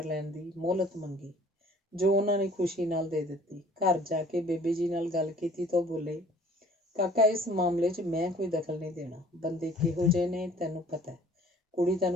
ਲੈਣ ਦੀ ਮੋਹਲਤ ਮੰਗੀ, ਜੋ ਉਹਨਾਂ ਨੇ ਖੁਸ਼ੀ ਨਾਲ ਦੇ ਦਿੱਤੀ। ਘਰ ਜਾ ਕੇ ਬੇਬੇ ਜੀ ਨਾਲ ਗੱਲ ਕੀਤੀ ਤਾਂ ਉਹ ਬੋਲੇ, ਕਾਕਾ ਇਸ ਮਾਮਲੇ 'ਚ ਮੈਂ ਕੋਈ ਦਖਲ ਨਹੀਂ ਦੇਣਾ। ਬੰਦੇ ਕਿਹੋ ਜਿਹੇ ਨੇ ਤੈਨੂੰ ਪਤਾ ਹੈ, ਕੁੜੀ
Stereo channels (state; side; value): normal; both; correlation 0.53